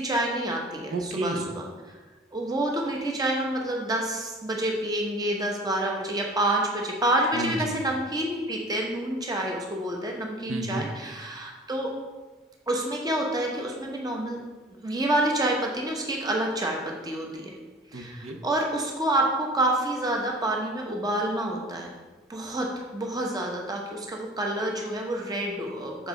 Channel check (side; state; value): both; normal; correlation 0.43